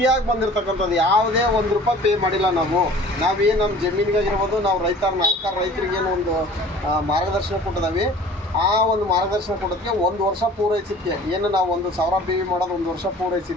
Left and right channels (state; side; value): normal; both; correlation 0.47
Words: ಬಂದಿರತಕ್ಕಂಥದ್ದು. ಯಾವುದೇ ₹1 ಪೇ ಮಾಡಿಲ್ಲ ನಾವೇನು ನಮ್ಮ ಜಮೀನಿಗಾಗಿರ್ಬೋದು, ನಾವು ರೈತರಿಗೇನು ಒಂದು ಮಾರ್ಗದರ್ಶನ ಕೊಟ್ಟಿದ್ದೀವಿ. ಆ ಒಂದು ಮಾರ್ಗದರ್ಶನ ಕೊಡೋದಕ್ಕೆ 1 ವರ್ಷ ಪೂರೈಸಿದ್ದಕ್ಕೆ ಏನು ನಾವು 1,000 BV ಮಾಡೋದು 1 ವರ್ಷ